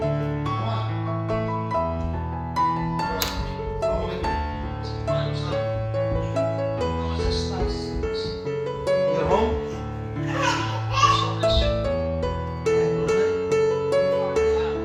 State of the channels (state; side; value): identical; both; correlation 1.00